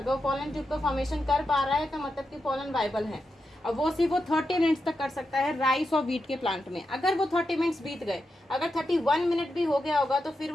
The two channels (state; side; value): normal; both; correlation 0.87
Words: वो पोलन ट्यूब का फॉर्मेशन कर पा रहा है तो मतलब कि पोलन वायबल है। और वो सिर्फ वो 30 मिनट्स तक कर सकता है राइस और वीट के प्लांट में। अगर वो 30 मिनट्स बीत गए, अगर 31 मिनट भी हो गया होगा तो फिर